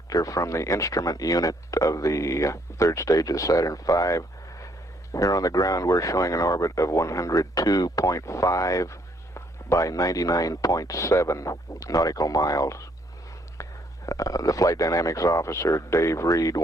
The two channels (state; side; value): normal; both; correlation 0.68